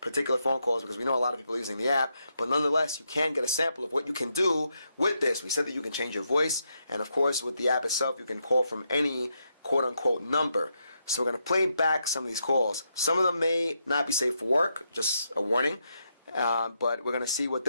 phone calls because we know a lot of people are using the app, but nonetheless, you can get a sample of what you can do with this. We said that you can change your voice, and of course, with the app itself, you can call from any quote-unquote number. So we're going to play back some of these calls. Some of them may not be safe for work, just a warning, but we're going to see what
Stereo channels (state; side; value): inverted; both; correlation -0.81